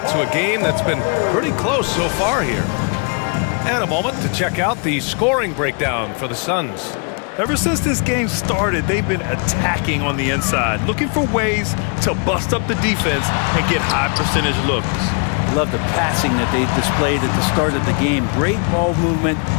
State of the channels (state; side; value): quieter; right; 39.1 dB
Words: to a game that's been pretty close so far here. And a moment to check out the scoring breakdown for the Suns. Ever since this game started, they've been attacking on the inside, looking for ways to bust up the defense and get high percentage looks. I love the passing that they displayed at the start of the game. Great ball movement